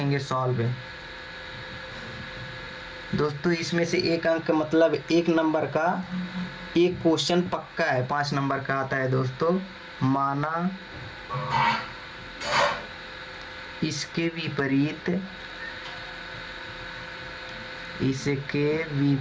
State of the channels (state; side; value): identical; both; correlation 1.00